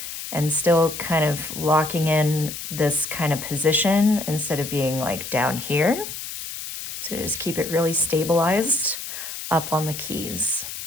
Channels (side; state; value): left; noise; hiss, 8 dB below the sound